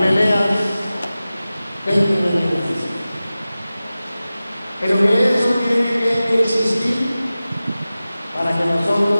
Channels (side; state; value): both; inverted; correlation -0.96